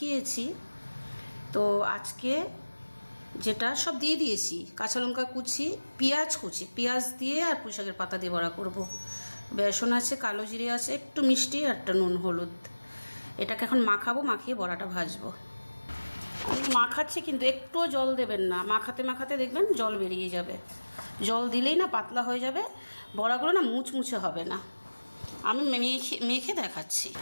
তো আজকে যেটা সব দিয়ে দিয়েছি, কাঁচা লঙ্কা কুচি, পেঁয়াজ কুচি, পেঁয়াজ দিয়ে আর পুঁই শাকের পাতা দিয়ে বড়া করব। বেসন আছে, কালো জিরে আছে, একটু মিষ্টি আর একটা নুন হলুদ। এটাকে এখন মাখাবো, মাখিয়ে বড়াটা ভাজবো। আমি মাখাচ্ছি কিন্তু একটুও জল দেবেন না। মাখাতে মাখাতে দেখবেন জল বেরিয়ে যাবে। জল দিলেই না পাতলা হয়ে যাবে, বড়াগুলো না মুচমুচে হবে না। আমি মেখে দেখাচ্ছি।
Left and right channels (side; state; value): both; inverted; correlation -1.00